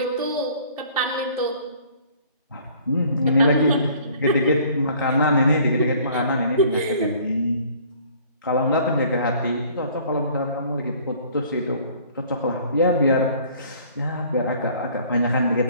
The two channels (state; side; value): inverted; both; correlation -0.54